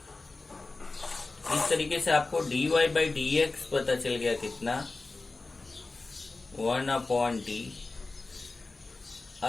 इस तरीके से आपको dy by dx पता चल गया कितना 1 upon t।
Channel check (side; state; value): right; quieter; 3.5 dB